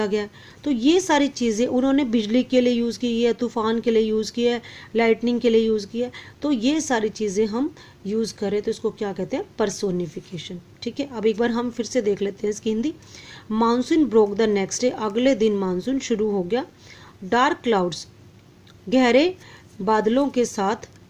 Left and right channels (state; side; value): identical; both; correlation 1.00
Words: गया। तो ये सारी चीज़ें उन्होंने बिजली के लिए यूज़ की है, तूफान के लिए यूज़ किया है, लाइटनिंग के लिए यूज़ किया है। तो ये सारी चीज़ें हम यूज़ करें तो इसको क्या कहते हैं, पर्सोनिफिकेशन, ठीक है। अब एक बार हम फिर से देख लेते हैं इसकी Hindi. Monsoon broke the next day, अगले दिन मानसून शुरू हो गया। डार्क क्लाउड्स, गहरे बादलों के साथ,